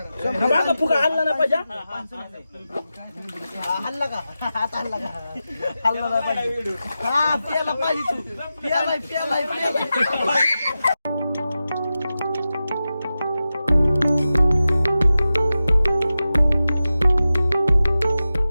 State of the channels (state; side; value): inverted; both; correlation -0.93